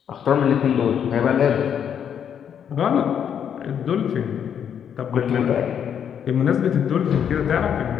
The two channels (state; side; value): quieter; right; 8.4 dB